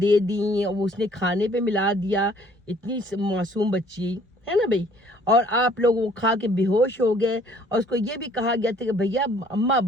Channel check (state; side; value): normal; both; correlation 0.59